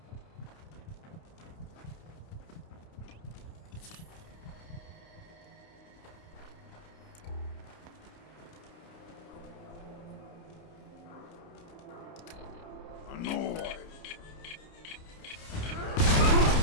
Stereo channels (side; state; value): right; late; 30 ms